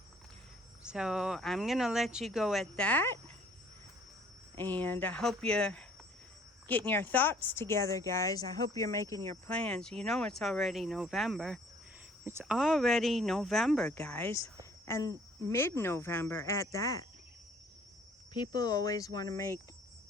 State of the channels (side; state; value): both; normal; correlation 0.57